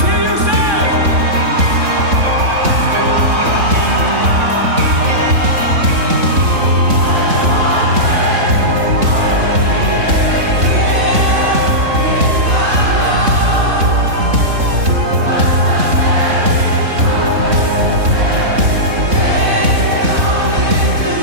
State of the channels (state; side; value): late; left; 3.6 ms